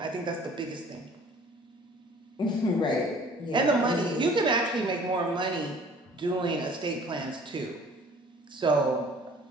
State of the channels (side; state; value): both; normal; correlation 0.52